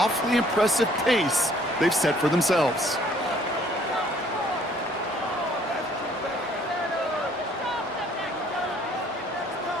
impressive pace they've set for themselves.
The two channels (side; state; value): both; normal; correlation 0.60